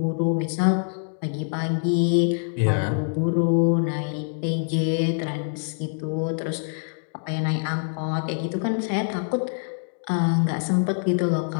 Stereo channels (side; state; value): right; silent; digital silence